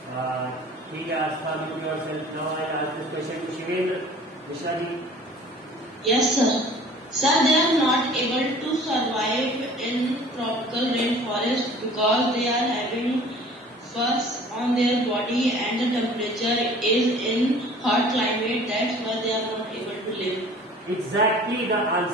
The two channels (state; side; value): normal; both; correlation 0.48